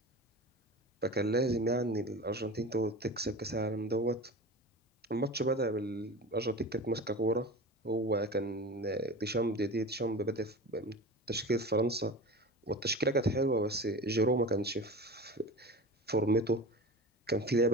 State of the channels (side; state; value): both; normal; correlation 0.32